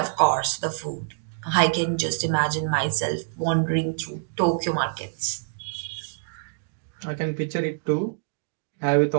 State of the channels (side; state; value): left; silent; digital silence